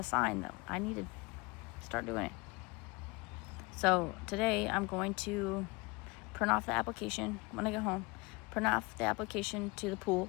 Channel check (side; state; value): right; quieter; 25.9 dB